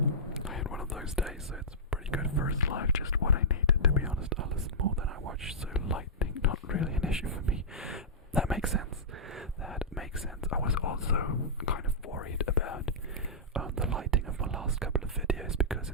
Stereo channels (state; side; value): normal; both; correlation -0.14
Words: "I had one of those days, so it's pretty good first live. Just what I needed, to be honest. I listen more than I watch, so lightning not really an issue for me." That makes sense. I was also kind of worried about the lighting of my last couple of videos, because